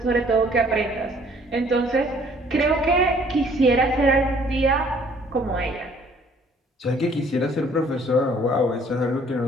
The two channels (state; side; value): normal; both; correlation 0.58